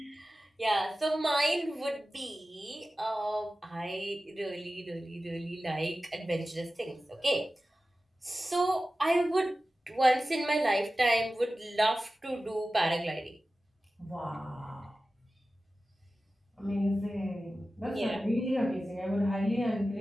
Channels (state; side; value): normal; both; correlation 0.95